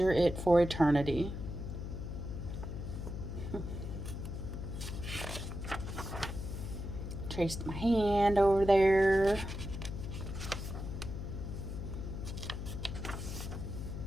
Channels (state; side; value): noise; left; hum, 6 dB below the sound